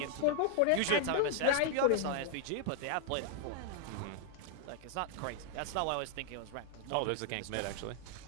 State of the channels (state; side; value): different; both; correlation -0.01